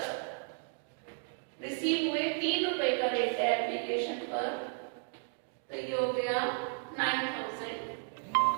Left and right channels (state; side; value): silent; left; 55 dB below the other